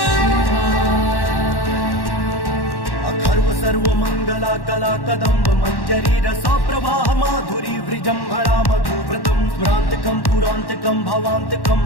अखर्व सर्वमङ्गला कला कदम्ब मञ्जरी रसा प्रवाह माधुरी वृजम्भणा मधुव्रतं स्मरान्तकं पुरान्तकं भवान्तकं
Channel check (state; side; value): late; right; 1.1 ms